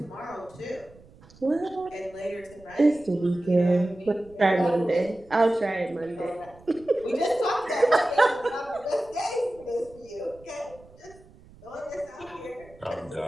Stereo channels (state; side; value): noise; right; rumble, 24 dB below the sound